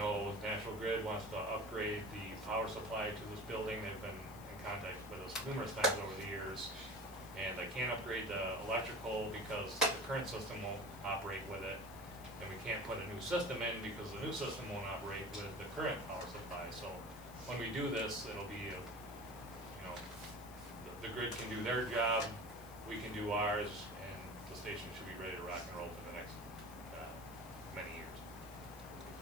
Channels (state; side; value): noise; left; hiss, 18 dB below the sound